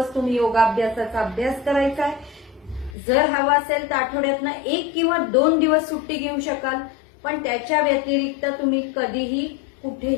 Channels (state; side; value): drops out; right; at 3.0 s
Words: तुम्ही योगाभ्यासाचा अभ्यास करायचा आहे. जर हवा असेल तर आठवड्यातनं 1 किंवा 2 दिवस सुट्टी घेऊ शकाल, पण त्याच्या व्यतिरिक्त तुम्ही कधीही